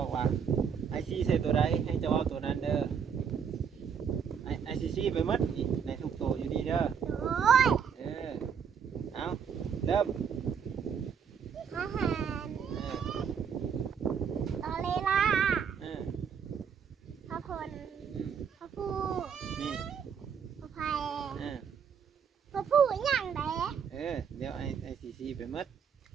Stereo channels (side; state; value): left; quieter; 7.1 dB